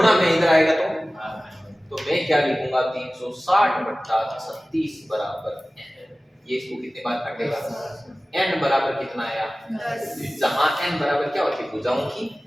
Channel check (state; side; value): normal; both; correlation 0.97